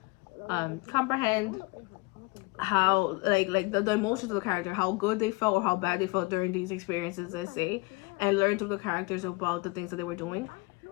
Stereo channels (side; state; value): right; quieter; 26.1 dB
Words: comprehend how like the emotions of the character, how good they felt or how bad they felt during these experiences, let's say, and learn through the characters about the things that they were doing.